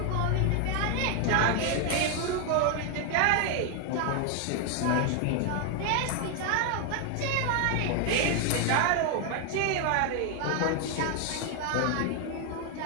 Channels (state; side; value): different; both; correlation 0.01